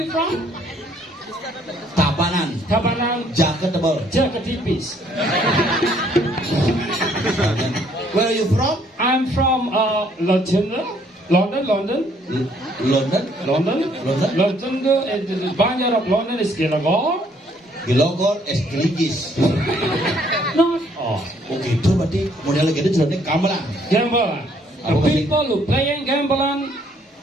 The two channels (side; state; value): both; normal; correlation 0.65